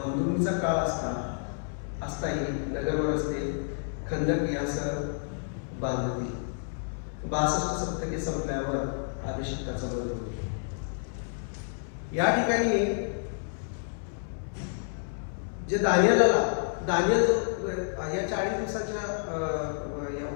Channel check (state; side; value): silent; right; 58 dB below the other